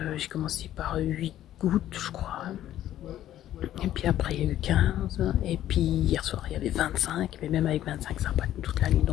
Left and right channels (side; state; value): right; quieter; 12.5 dB